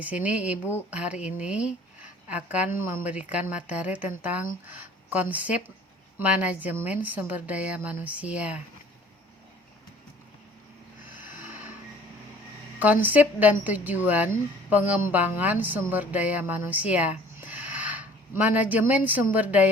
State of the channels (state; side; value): normal; both; correlation 0.52